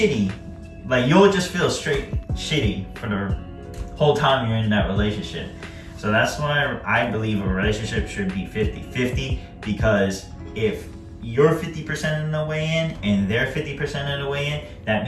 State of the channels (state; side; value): identical; both; correlation 1.00